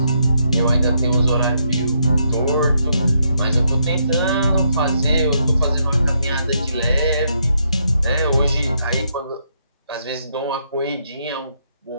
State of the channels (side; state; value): both; inverted; correlation -0.76